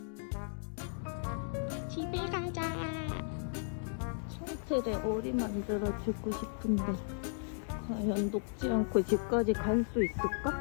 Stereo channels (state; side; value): silent; right; digital silence